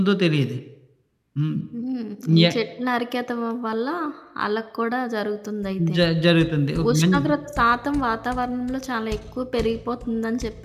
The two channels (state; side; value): identical; both; correlation 1.00